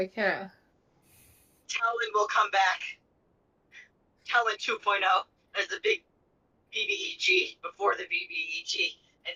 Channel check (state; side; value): identical; both; correlation 1.00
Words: cat. Talon will come back. Talon 2.0 as the big BBEG before the BBEG,